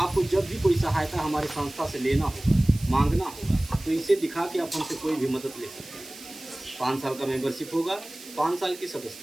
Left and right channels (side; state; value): right; noise; hiss, 17 dB below the sound